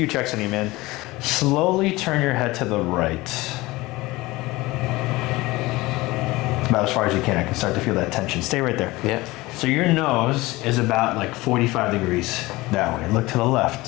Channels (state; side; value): quieter; right; 20.5 dB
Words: checks on you, man. Slowly turn your head to the right. About as far as you can. I can start to feel that tension. Stay right there. Yeah. So your nose is about like 45 degrees that way. Look to the